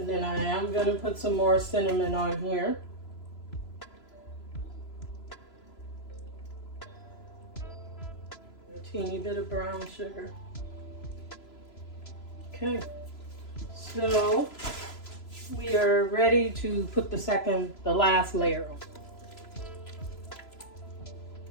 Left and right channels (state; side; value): late; right; 3.0 ms